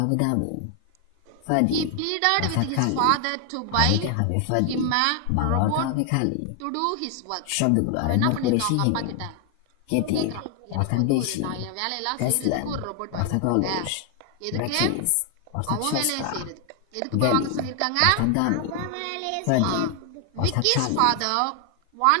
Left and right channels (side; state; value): both; different; correlation 0.00